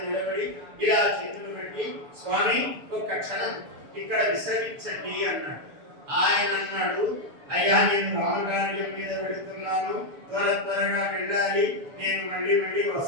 నిలబడి ఇలా చేతులు పెట్టి, స్వామి ఒక్క క్షణం ఇక్కడ విశ్రమించండి అన్నాడు. ఆయన అన్నాడు, అయ్యా నేను రామకార్యం మీద పెడుతున్నాను, త్వరగా వెళ్ళాలి, నేను మళ్ళీ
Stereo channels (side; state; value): left; late; 7.0 ms